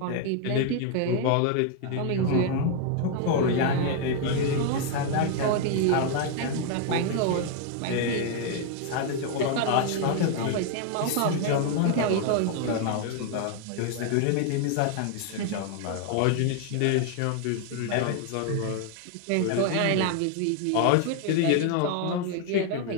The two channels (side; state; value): both; different; correlation 0.00